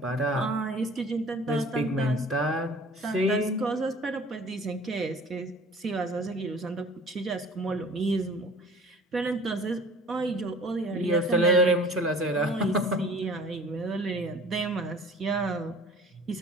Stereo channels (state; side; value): normal; both; correlation 0.47